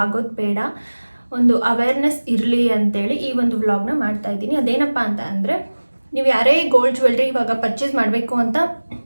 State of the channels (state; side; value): inverted; both; correlation -1.00